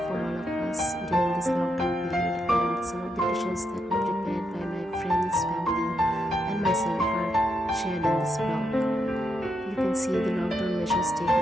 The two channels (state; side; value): normal; both; correlation 0.82